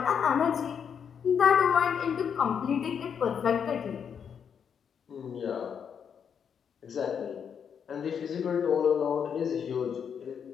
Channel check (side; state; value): right; quieter; 7.4 dB